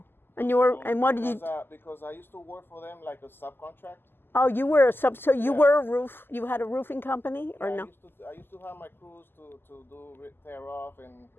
And you were, and what did you? Because I used to work for them like a subcontract. Oh, you were a sub. So you were a roof. You had a roofing company, or no? I used to have my crews to do tear off and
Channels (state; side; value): late; right; 0.10 ms